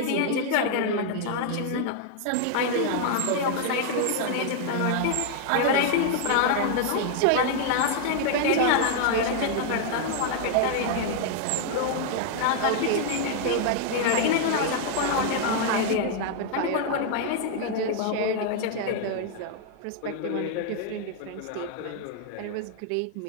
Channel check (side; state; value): both; different; correlation 0.00